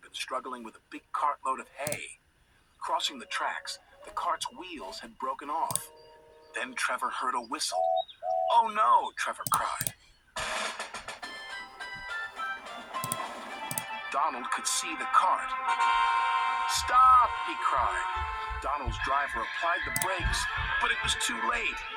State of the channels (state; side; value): identical; both; correlation 1.00